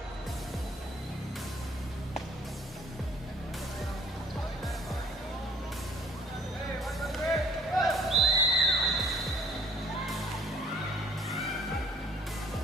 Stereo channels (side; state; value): both; normal; correlation 0.57